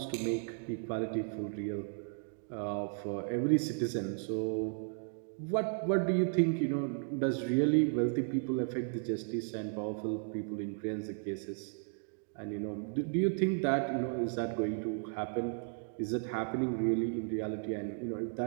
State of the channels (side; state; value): left; silent; 55 dB below the other